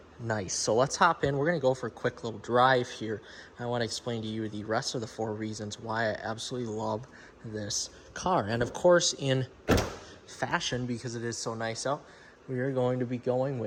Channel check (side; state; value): both; identical; correlation 1.00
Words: nice. So let's hop in. We're going to go for a quick little drive here. I want to explain to you the rest of the 4 reasons why I absolutely love this car. And of course, in fashion, because it is so nice out, we are going to be going